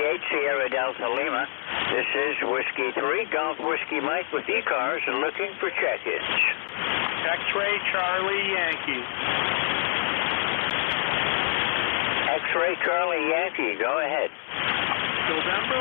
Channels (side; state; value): right; silent; 61 dB below the other